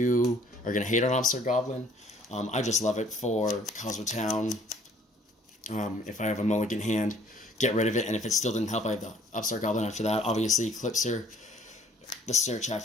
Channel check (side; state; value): both; normal; correlation 0.58